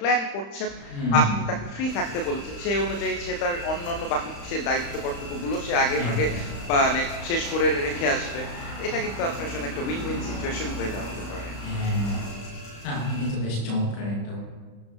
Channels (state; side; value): late; right; 35 ms